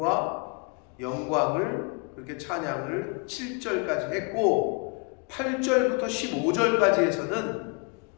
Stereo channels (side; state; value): right; quieter; 33.3 dB